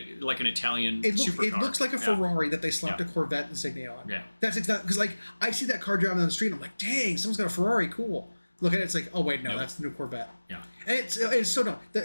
like an Italian supercar. It looks like a Ferrari that they slapped a Corvette insignia on. Yeah. That's exactly... Because, I see that car driving down the street, and I'm like, dang, someone's got a Ferrari, cool. Look at it, it's like, oh wait, no, that's the new Corvette. Yeah. And it's so dumb.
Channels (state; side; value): inverted; both; correlation -1.00